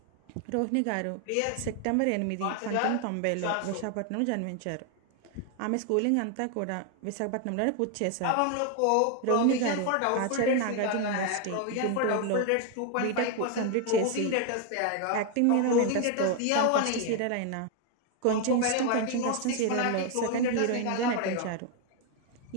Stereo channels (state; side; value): different; both; correlation 0.01